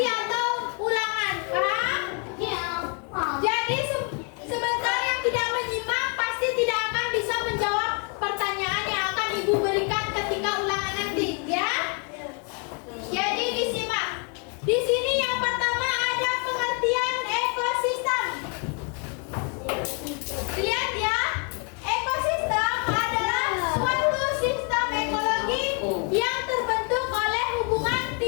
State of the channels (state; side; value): quieter; right; 37.9 dB